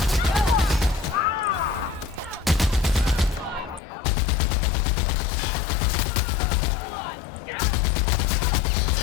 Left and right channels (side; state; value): right; drops out; at 3.8 s